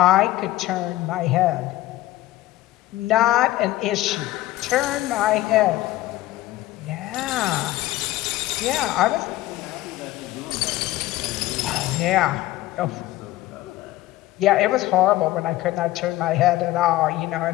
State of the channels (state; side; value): quieter; right; 16.0 dB